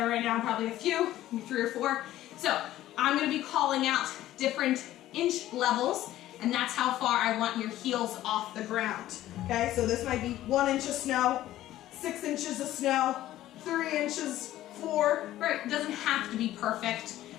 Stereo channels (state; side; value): quieter; right; 14.1 dB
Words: right now, probably a few, maybe 3 or 4. So I'm gonna be calling out different inch levels, and that's how far I want your heels off the ground. Okay, so this might be 1 inch of snow, 6 inches of snow, 3 inches, 4, right? It doesn't have to be perfect.